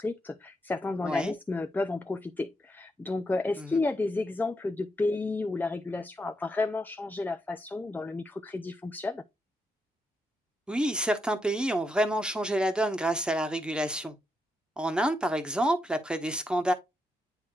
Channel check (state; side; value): normal; both; correlation 0.82